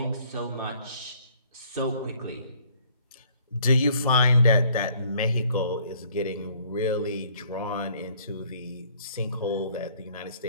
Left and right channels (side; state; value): both; inverted; correlation -0.60